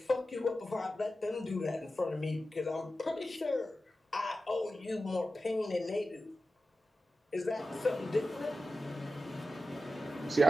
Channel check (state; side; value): normal; both; correlation 0.93